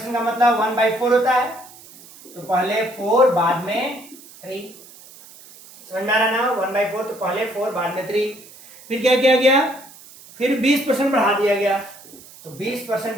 का मतलब 1/4 होता है, तो पहले 4 बाद में 3। समझ में आ रहा ना? 1/4 तो पहले 4 बाद में 3। फिर क्या किया गया? फिर 20% बढ़ा दिया गया, तो 20%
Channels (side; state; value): right; noise; hiss, 21 dB below the sound